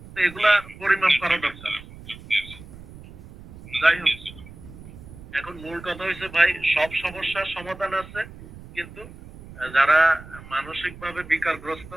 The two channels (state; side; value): noise; right; rumble, 17 dB below the sound